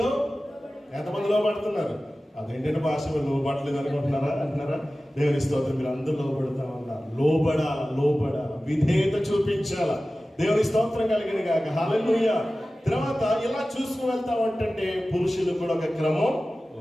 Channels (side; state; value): both; normal; correlation 0.96